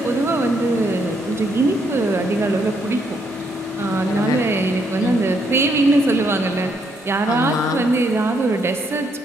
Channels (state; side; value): normal; both; correlation 0.74